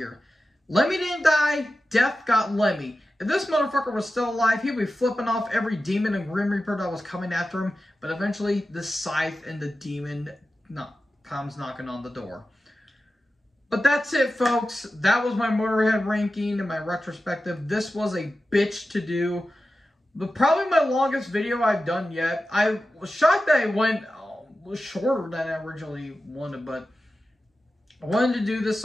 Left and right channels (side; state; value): both; normal; correlation 0.93